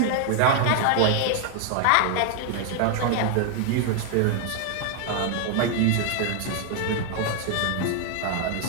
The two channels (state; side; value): different; both; correlation 0.00